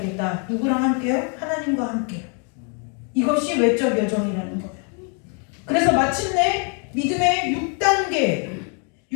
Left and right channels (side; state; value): right; quieter; 40.0 dB